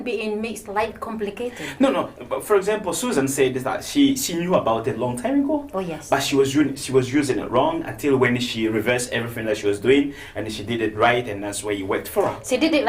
being makes life complicated. No. But for example, Susan said that she knew about it a long time ago. Oh yes. But she was using it wrong until when she reversed everything that she was doing and she did it right, and that's where you worked for her. She did it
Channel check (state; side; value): identical; both; correlation 1.00